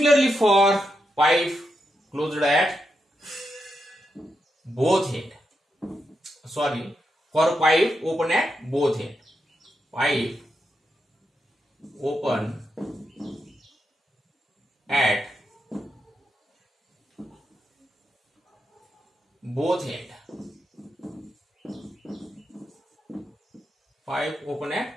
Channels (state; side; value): normal; both; correlation 0.84